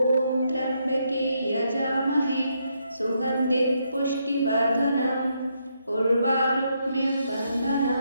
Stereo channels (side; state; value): both; inverted; correlation -0.78